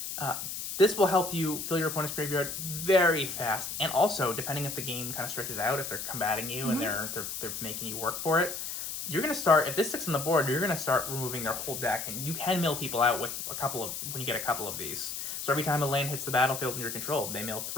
This will help you fill your opponent's graveyard very fast, and also depending if the game kind of stretches out, if they're combating you and they're making you work for it, you're gonna start if this sticks on the board. You're gonna start removing their whole deck, and you can mill people out with when you get a couple of these. So every time a lane hits the battlefield in your control, they mill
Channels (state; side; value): noise; left; hiss, 5 dB below the sound